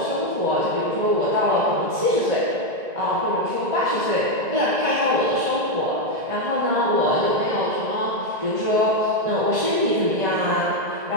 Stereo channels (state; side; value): late; left; 1.9 ms